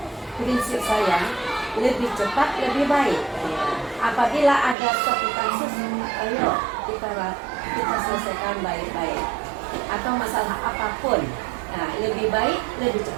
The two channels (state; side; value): drops out; left; at 4.8 s